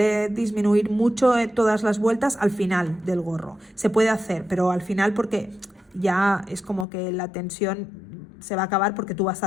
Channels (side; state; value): right; drops out; at 6.9 s